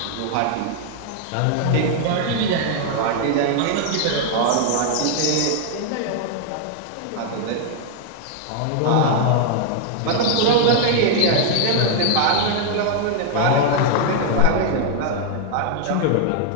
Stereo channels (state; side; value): different; both; correlation 0.00